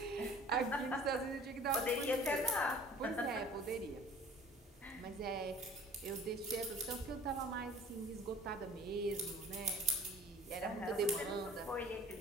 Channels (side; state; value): both; normal; correlation 0.48